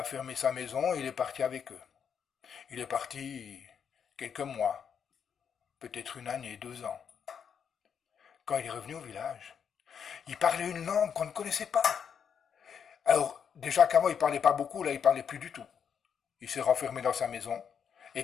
fermé sa maison et il est parti avec eux. Il est parti quelques mois, peut-être une année, 2 ans. Quand il est revenu au village, il parlait une langue qu'on ne connaissait pas. Alors, déjà qu'avant, il parlait pas beaucoup, là, il parlait plus du tout. Il s'est renfermé dans sa maison,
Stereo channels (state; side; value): quieter; right; 7.4 dB